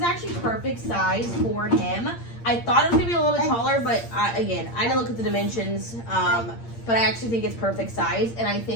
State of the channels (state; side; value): late; right; 8.7 ms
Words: actually perfect size for him. I thought it was gonna be a little bit taller, but again, I didn't look at the dimensions. But I actually think it's perfect size, and I